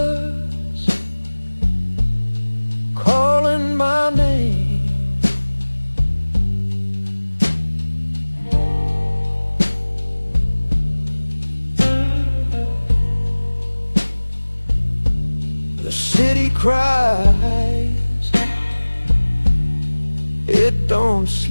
calling my name. The city cries, it don't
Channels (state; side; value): inverted; both; correlation -1.00